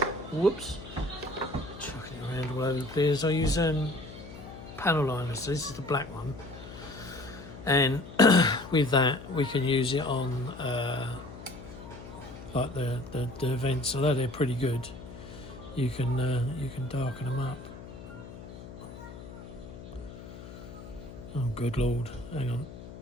whoops, chucking it around all over the place. I use panel liners. So this is the black one, and with that we can use it on like the vents. Although they're pretty good, you can darken them up. Oh, good Lord, hang on.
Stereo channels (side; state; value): left; noise; hum, 14 dB below the sound